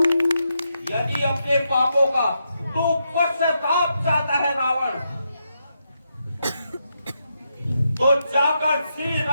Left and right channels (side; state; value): both; inverted; correlation -0.83